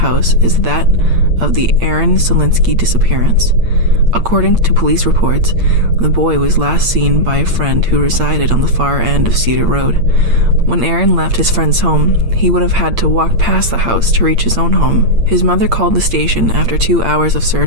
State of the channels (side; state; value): left; late; 8.7 ms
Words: is that of the Aaron Solinsky disappearance. According to police reports, the boy was last seen by a friend who resided on the far end of Cedar Road. When Aaron left his friend's home, he would have had to walk past the house to reach his own home. His mother called the station after 2 hours of